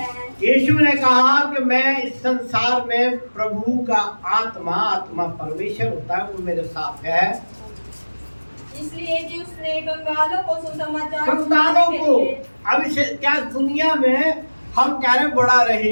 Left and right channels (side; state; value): both; inverted; correlation -1.00